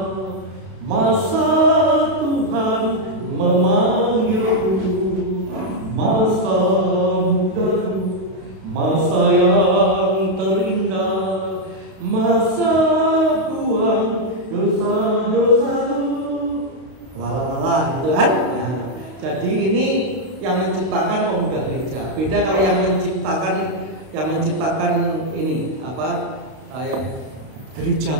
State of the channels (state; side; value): late; left; 32 ms